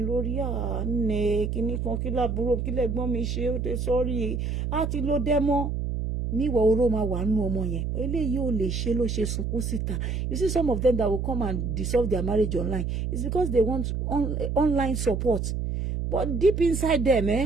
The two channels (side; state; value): right; noise; hum, 2 dB below the sound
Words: lórí àánẹ kíní kan kí lábúrò kí lẹ́gbọ́n mi ṣe ó tẹ sọ́rí àti ló dẹ́mọ́ níwọ̀ oró máa wà nù ọmọ yẹn eléyìí ò lè ṣe ló ṣe sunkún síta you see some of them that will come and dissolve their marriage online it's because they want online support but deep inside them